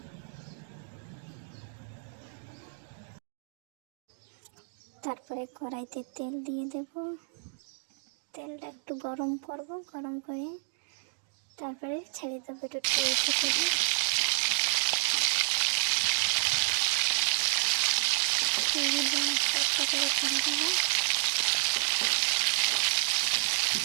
তারপরে কড়াইতে তেল দিয়ে দেব। তেলটা একটু গরম করব, গরম করে তারপরে ছেড়ে দেবো একটু টেস্ট করে। করে ছেড়ে দেবো।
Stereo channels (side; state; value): left; silent; digital silence